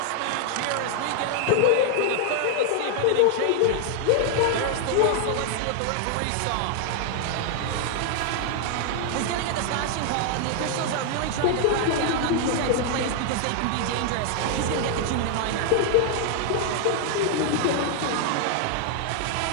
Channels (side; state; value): both; different; correlation 0.00